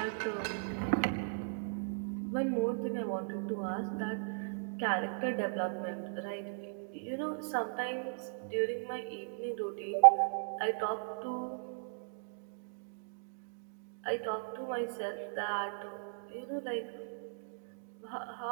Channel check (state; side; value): silent; left; digital silence